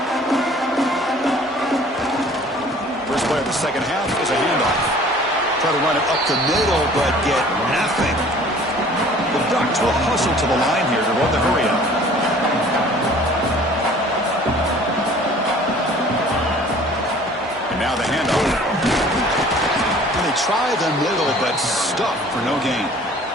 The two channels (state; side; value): normal; both; correlation 0.50